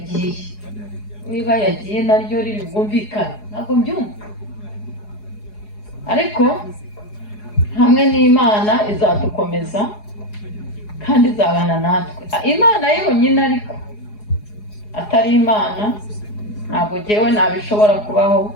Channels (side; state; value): right; late; 4.8 ms